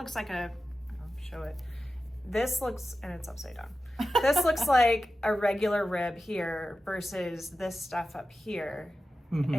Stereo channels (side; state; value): both; normal; correlation 0.93